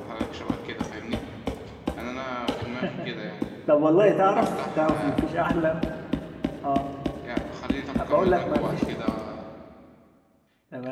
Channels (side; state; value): both; identical; correlation 1.00